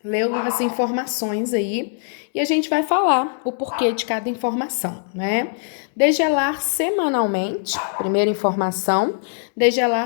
leu as informações aí e a gente vai falar o porquê de cada informação, né? Degelar semanalmente, primeira informação,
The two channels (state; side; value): silent; right; digital silence